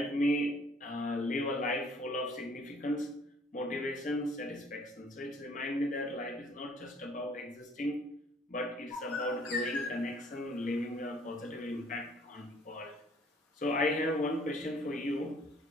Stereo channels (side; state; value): both; normal; correlation 0.58